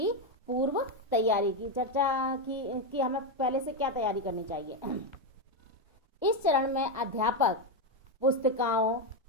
पूर्व तैयारी की। चर्चा की हमें पहले से क्या तैयारी करनी चाहिए। इस चरण में अध्यापक पुस्तिकाओं,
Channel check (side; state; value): both; normal; correlation 0.07